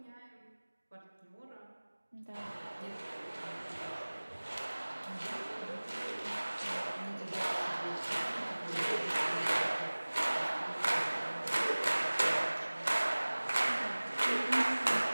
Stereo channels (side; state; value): both; inverted; correlation -1.00